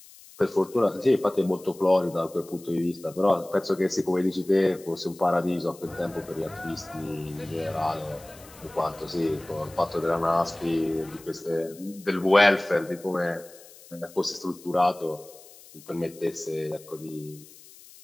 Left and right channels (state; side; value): noise; left; hiss, 21 dB below the sound